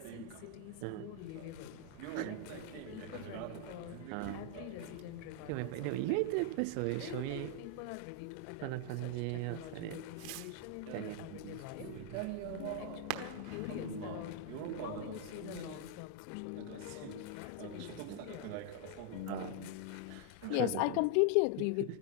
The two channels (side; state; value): both; different; correlation 0.00